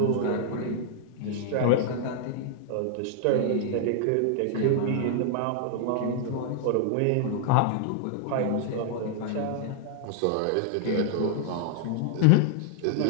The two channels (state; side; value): different; both; correlation -0.01